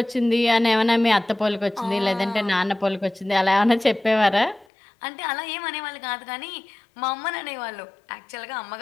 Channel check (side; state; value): right; drops out; at 4.7 s